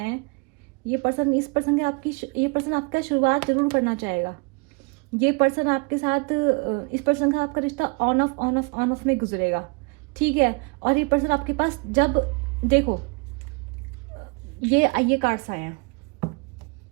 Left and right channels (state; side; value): quieter; left; 31.3 dB